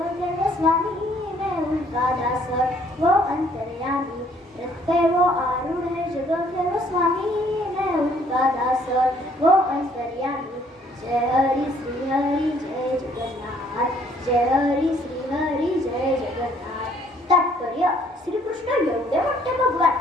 के स्वामी, मैं उनका दास वो अंतर्यामी. रथ पे वो आरूढ़ है जगत के स्वामी, मैं उनका दास वो अंतर्यामी. जय हरी श्री हरी जय जगन्नाथ, जय हरी श्री हरी जय जगन्नाथ. तात्पर्य, श्रीकृष्ण एवढे मोठे भगवान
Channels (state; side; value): normal; both; correlation 0.62